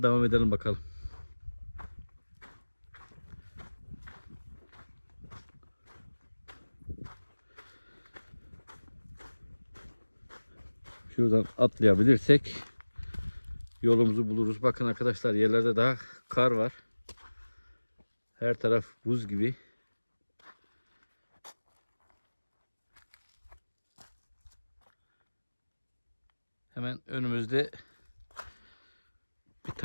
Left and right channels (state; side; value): inverted; both; correlation -1.00